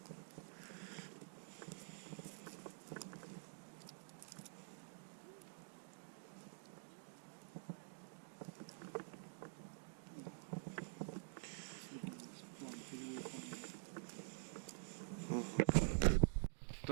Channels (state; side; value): silent; left; digital silence